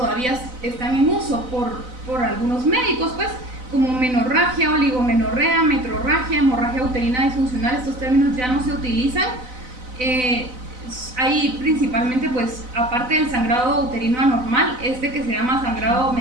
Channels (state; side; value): late; left; 4.0 ms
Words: están en uso por algunos médicos, pues, como menorragia, oligomenorrea, metrorragia, hemorragia uterina disfuncional. Estos términos ya no se utilizan. Hay principalmente, pues, aparte del sangrado uterino anormal, que se llama sangrado